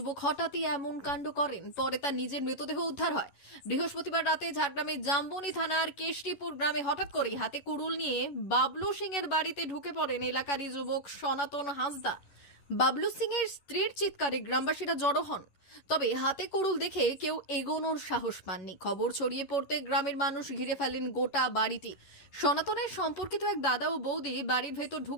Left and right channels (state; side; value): late; right; 11 ms